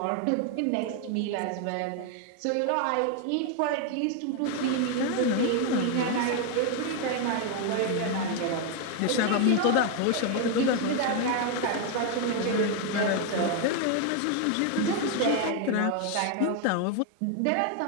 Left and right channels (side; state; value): both; different; correlation 0.01